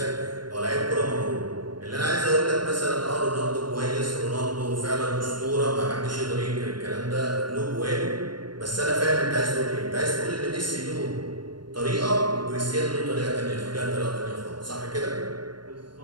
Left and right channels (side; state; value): left; late; 0.72 ms